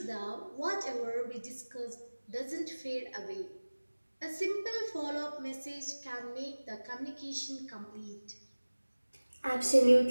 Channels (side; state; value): both; inverted; correlation -1.00